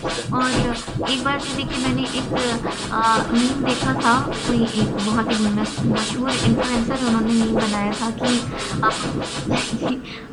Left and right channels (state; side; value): identical; both; correlation 1.00